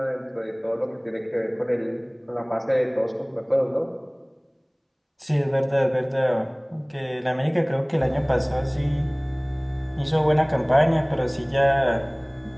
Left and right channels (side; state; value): both; identical; correlation 1.00